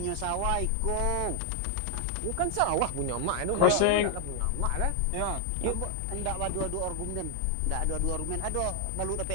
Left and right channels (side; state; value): both; different; correlation 0.00